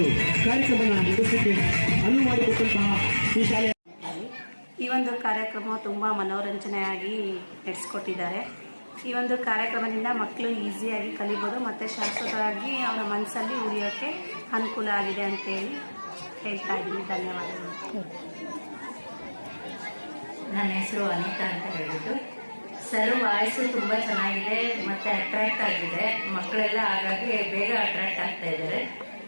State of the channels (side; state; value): both; inverted; correlation -1.00